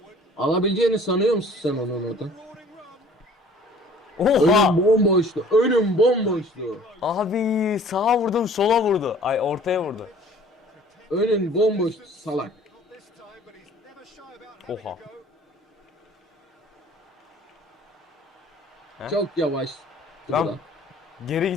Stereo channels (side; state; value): both; normal; correlation 0.51